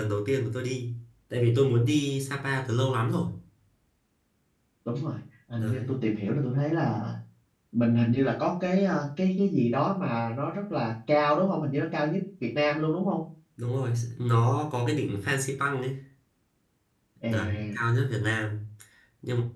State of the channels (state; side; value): identical; both; correlation 1.00